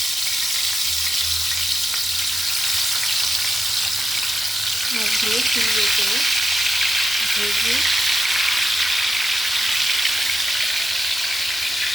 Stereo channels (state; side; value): normal; both; correlation 0.89